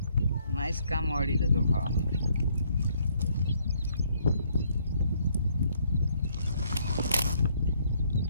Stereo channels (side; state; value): both; inverted; correlation -0.68